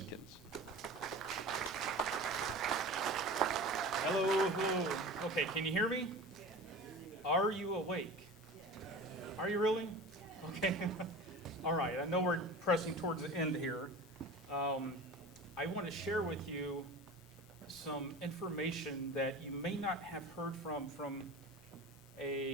Hello, hello. Okay, can you hear me? Are you awake? Are you really? Okay. All right, I know we're pressing towards the end here. I want to share with you some information that you may not have heard from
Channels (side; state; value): both; normal; correlation 0.35